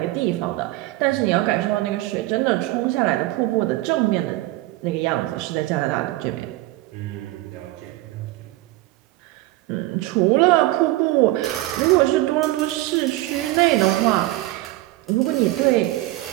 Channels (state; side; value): quieter; left; 17.9 dB